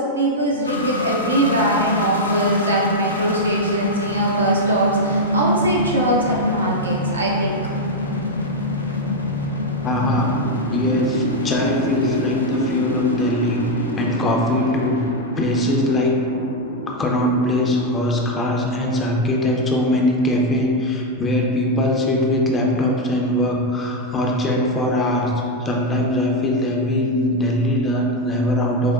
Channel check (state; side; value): normal; both; correlation 0.03